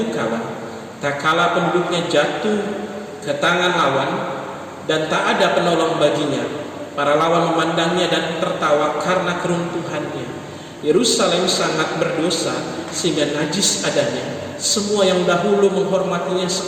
kala. Tak kala penduduknya jatuh ke tangan lawan dan tak ada penolong baginya. Para lawan memandangnya dan tertawa karena keruntuhannya. Yerusalem sangat berdosa sehingga najis adanya. Semua yang dahulu menghormatinya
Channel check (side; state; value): both; identical; correlation 1.00